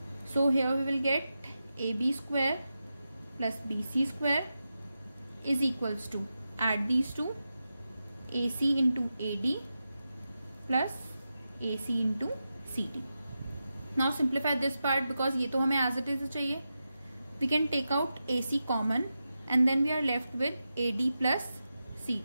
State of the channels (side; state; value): both; inverted; correlation -0.90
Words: So here we will get AB square plus BC square is equals to, add these two, AC into AD plus AC into CD. Now simplify this part because ये तो हमें as it is चाहिए. We can take out AC common and then we are left with AD plus